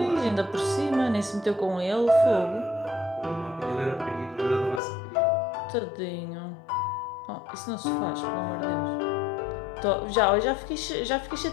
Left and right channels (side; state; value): right; drops out; at 4.8 s